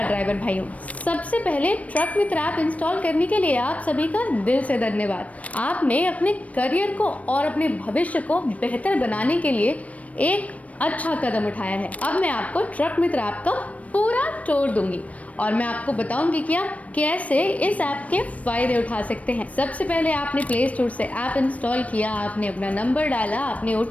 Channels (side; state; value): right; late; 0.067 ms